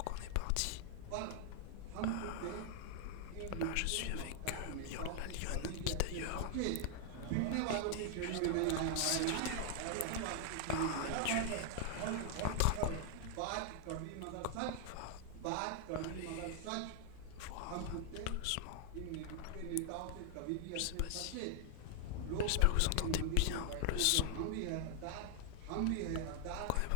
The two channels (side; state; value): both; different; correlation 0.00